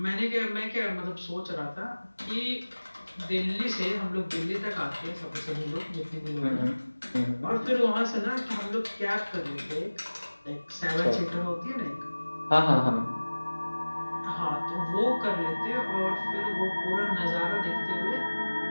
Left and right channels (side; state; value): both; inverted; correlation -1.00